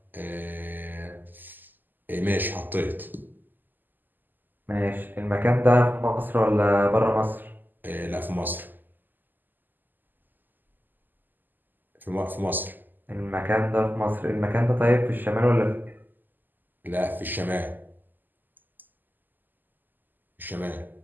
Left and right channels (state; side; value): late; left; 0.088 ms